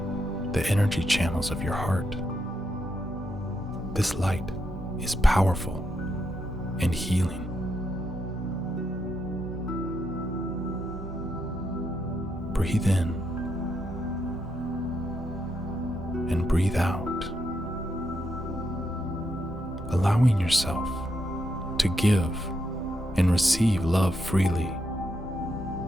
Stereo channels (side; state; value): both; normal; correlation 0.81